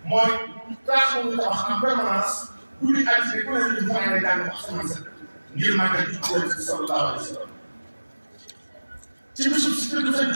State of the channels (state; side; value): inverted; both; correlation -1.00